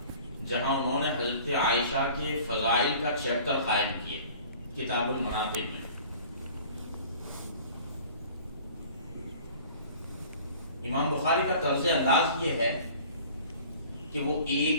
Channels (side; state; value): both; inverted; correlation -0.47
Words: جہاں انہوں نے حضرت عائشہ کے فضائل کا چیپٹر قائم کیا کتاب المناقب میں۔ امام بخاری کا طرز انداز یہ ہے کہ وہ